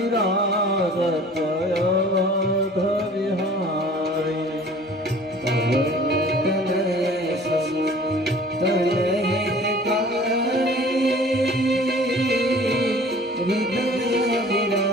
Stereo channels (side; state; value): both; normal; correlation 0.48